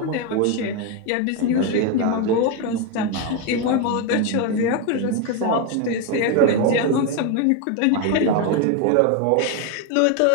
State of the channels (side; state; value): both; different; correlation 0.02